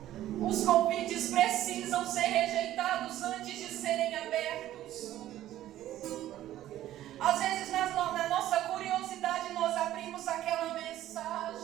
Os convites precisam ser rejeitados antes de serem abertos. Às vezes, na nossa curiosidade, nós abrimos aquela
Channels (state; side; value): quieter; left; 13.5 dB